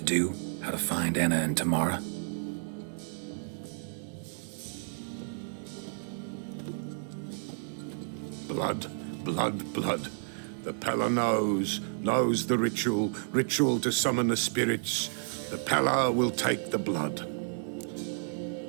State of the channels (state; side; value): silent; left; digital silence